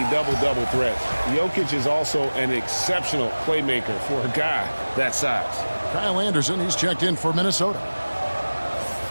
double-double threat. Jokic is also an exceptional playmaker for a guy that size. Kyle Anderson, he's checked in for Minnesota.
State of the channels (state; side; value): inverted; both; correlation -1.00